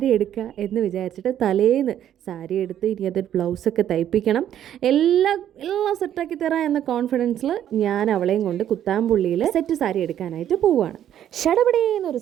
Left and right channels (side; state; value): left; quieter; 10.7 dB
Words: എടുക്കുക എന്ന് വിചാരിച്ചിട്ട് തലേന്ന് സാരി എടുത്ത് ഇനി അതൊരു ബ്ലൗസൊക്കെ തയ്പ്പിക്കണം, എല്ലാം സെറ്റാക്കി തരാം എന്ന കോൺഫിഡൻസിൽ ഞാൻ അവളെയും കൊണ്ട് കുത്താമ്പുള്ളിയിൽ സെറ്റ് സാരി എടുക്കാനായിട്ട് പോവുകയാണ്. ഷടപടേന്നൊരു